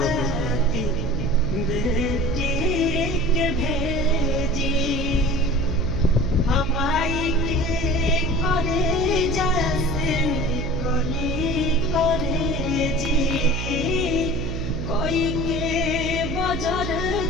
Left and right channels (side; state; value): right; noise; hum, 4 dB below the sound